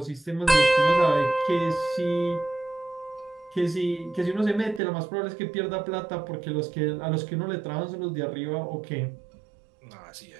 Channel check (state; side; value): drops out; left; at 4.8 s